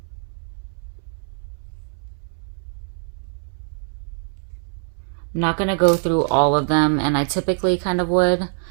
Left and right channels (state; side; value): silent; left; 63 dB below the other